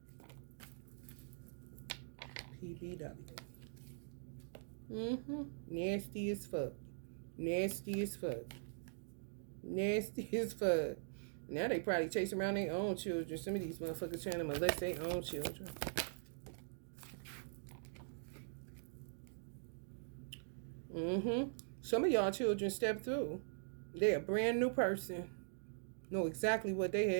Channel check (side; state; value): left; silent; digital silence